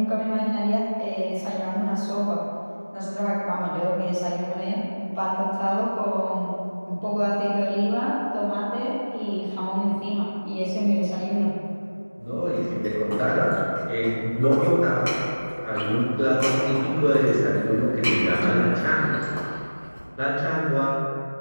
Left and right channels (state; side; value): inverted; both; correlation -1.00